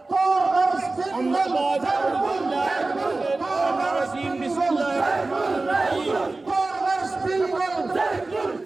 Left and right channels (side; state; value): left; quieter; 3.3 dB